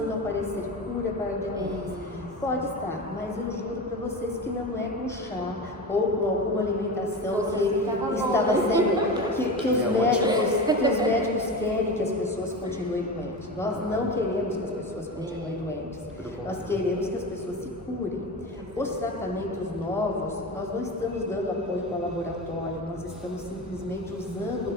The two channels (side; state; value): both; normal; correlation 0.26